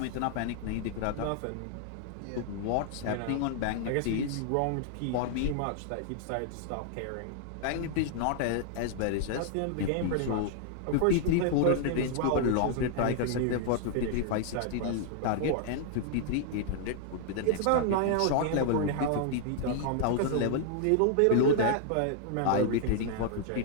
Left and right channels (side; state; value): both; different; correlation -0.01